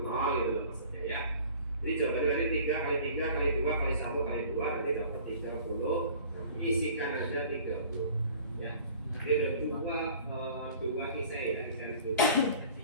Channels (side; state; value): both; inverted; correlation -0.47